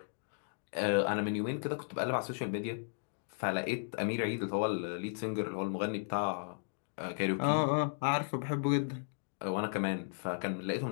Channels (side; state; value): right; silent; digital silence